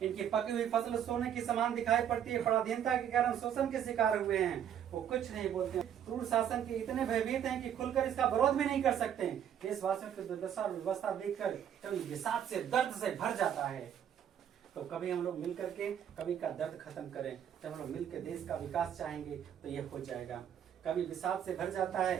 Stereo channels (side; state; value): left; quieter; 9.5 dB